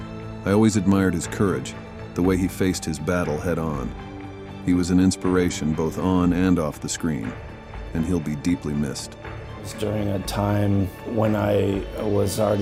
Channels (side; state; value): both; identical; correlation 1.00